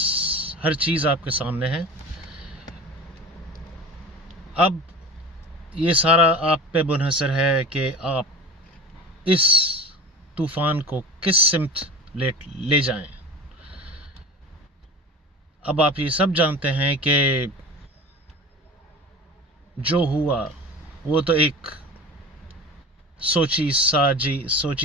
हर चीज़ आपके सामने है। अब ये सारा आप पे मुनहसर है कि आप इस तूफ़ान को किस सिमत ले जाएं। अब आप ये सब जानते हैं कि जो हुआ वो तो एक सोची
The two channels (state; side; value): normal; both; correlation 0.35